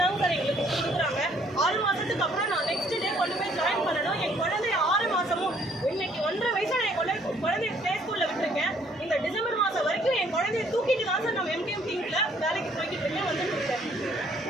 சார் எங்களுக்கு கொடுக்குறாங்க. 6 மாதத்துக்கு அப்புறம் நான் நெக்ஸ்ட் டே கொண்டு போய் ஜாயின் பண்ணணும். என் குழந்தைய 6 மாதமும் இன்னைக்கு 1.5 வயசு நான் என் குழந்தைய ப்ளே ஸ்கூலில் விட்டுருக்கேன். இந்த டிசம்பர் மாதம் வரைக்கும் என் குழந்தைய தூக்கிட்டு தான் சார் நம்ம MTM டீமில் வேலைக்கு போய்கிட்டு இருக்கேன். வந்துட்டு இருக்கேன்.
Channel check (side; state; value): both; normal; correlation 0.63